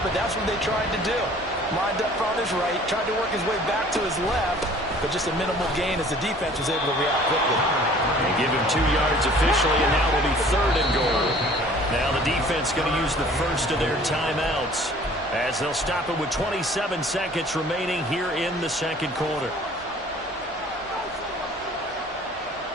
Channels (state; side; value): normal; both; correlation 0.51